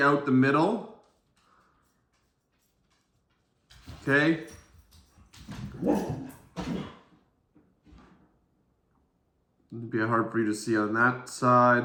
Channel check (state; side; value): identical; both; correlation 1.00